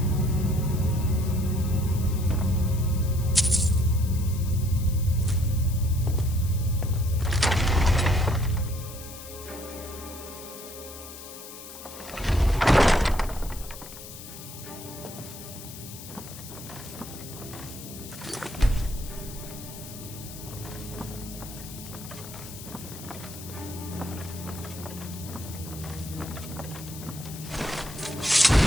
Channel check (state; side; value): noise; left; hiss, 13 dB below the sound